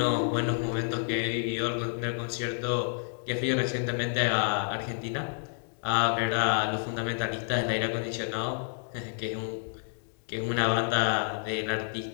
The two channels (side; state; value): right; silent; digital silence